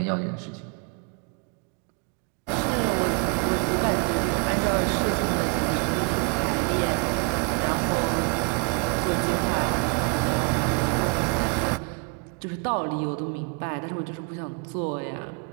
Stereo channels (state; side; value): quieter; left; 37.2 dB